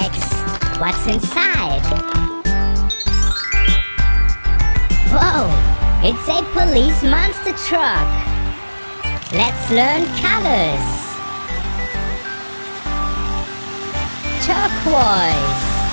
What's inside? Whoa! It's a police monster truck. Let's learn colors. Turquoise.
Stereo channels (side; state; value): both; inverted; correlation -1.00